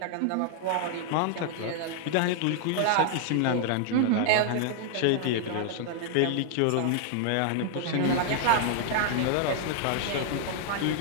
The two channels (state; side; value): different; both; correlation -0.01